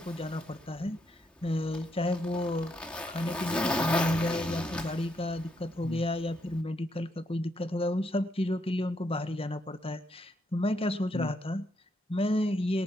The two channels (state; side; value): normal; both; correlation 0.77